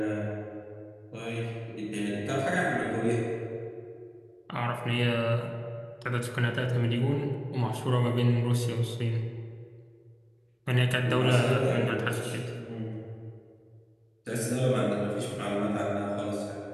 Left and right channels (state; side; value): identical; both; correlation 1.00